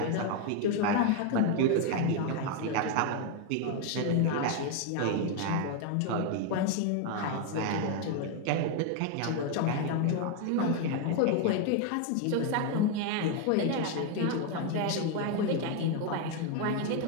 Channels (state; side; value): different; both; correlation 0.01